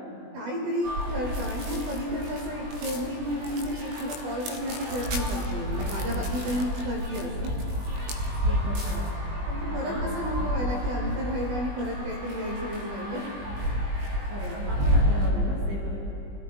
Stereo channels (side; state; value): left; late; 20 ms